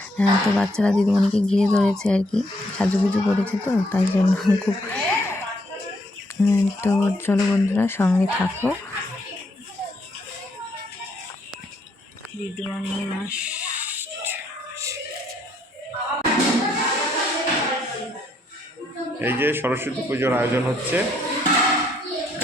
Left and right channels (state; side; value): normal; both; correlation 0.71